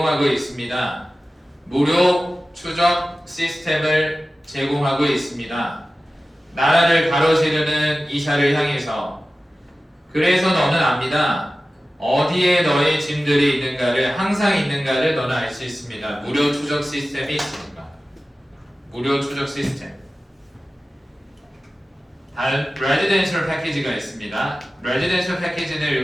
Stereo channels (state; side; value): normal; both; correlation 0.95